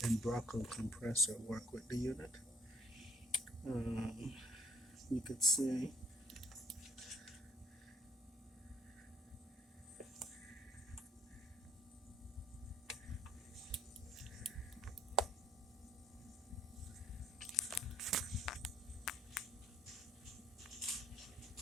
Embraco compressor work with the unit. You could see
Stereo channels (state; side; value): normal; both; correlation 0.63